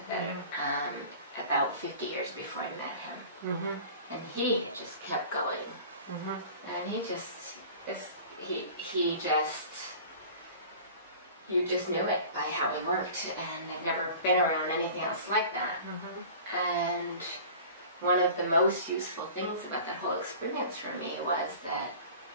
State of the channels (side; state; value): both; inverted; correlation -0.41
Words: about 50 years before I met him. And he had just kept going. And you just knew it by how he worked, and I've never been around anything else like that. And one of the most useful things about that whole experience for me was that